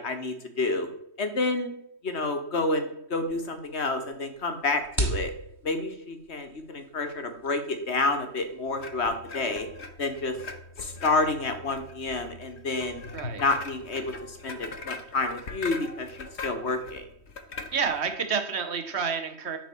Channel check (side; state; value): right; late; 3.1 ms